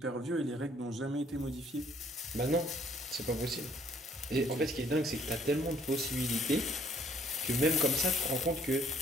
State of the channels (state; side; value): normal; both; correlation 0.62